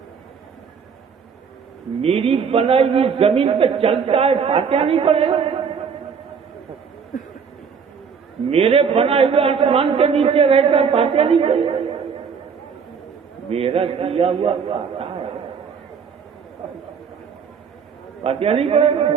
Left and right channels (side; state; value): left; quieter; 6.3 dB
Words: میری بنائی ہوئی زمین پہ چلتا ہے، فاتحہ نہیں پڑے گا؟ میرے بنائے ہوئے آسمان کے نیچے رہتا ہے، فاتحہ نہیں پڑے گا؟ میرا کیا ہوا کھاتا ہے، فاتحہ نہیں پڑے گا؟